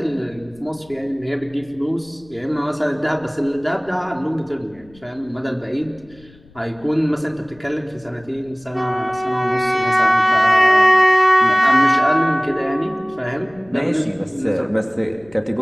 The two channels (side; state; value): left; noise; rumble, 26 dB below the sound